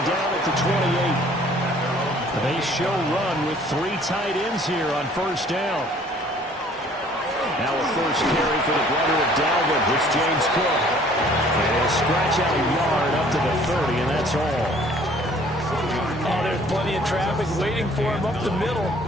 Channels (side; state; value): both; normal; correlation 0.56